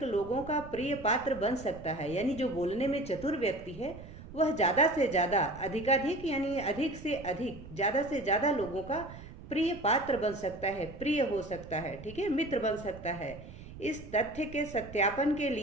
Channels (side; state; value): right; noise; rumble, 15 dB below the sound